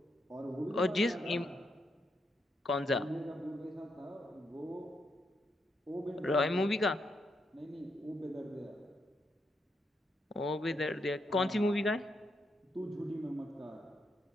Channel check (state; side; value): normal; both; correlation 0.80